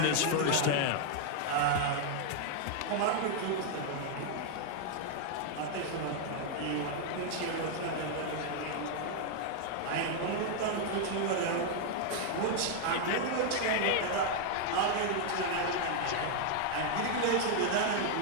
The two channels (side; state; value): both; different; correlation 0.00